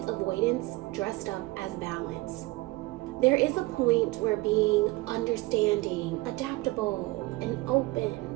avoidance dressed up as balance. There is a point where being understanding, adaptable, and open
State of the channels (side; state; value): left; quieter; 21.1 dB